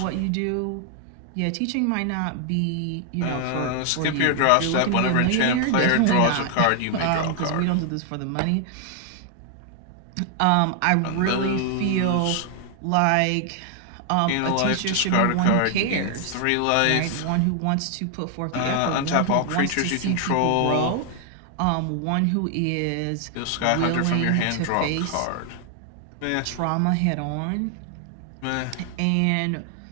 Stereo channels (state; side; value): different; both; correlation 0.00